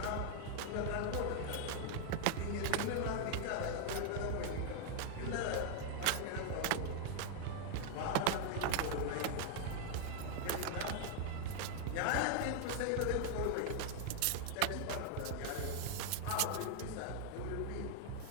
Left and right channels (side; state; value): both; different; correlation 0.00